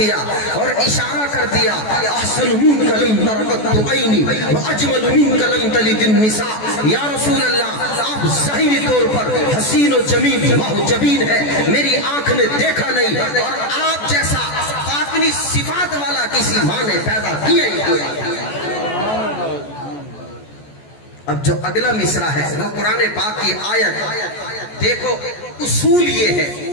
اور اشارہ کر دیا احسن منک لم تر قط عینی واجمل منک لم تلد النساء۔ یا رسول اللہ آپ ظاہری طور پر حسین و جمیل محجبین ہیں، میری آنکھ نے دیکھا نہیں، اور آپ جیسا باطنی صفات والا کسی ماں نے پیدا کیا ہی کوئی۔ اب جو اگلا مصرع ہے وہ قرآن پاک کی آیت، دیکھو اصول یہ ہے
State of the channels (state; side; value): late; right; 14 ms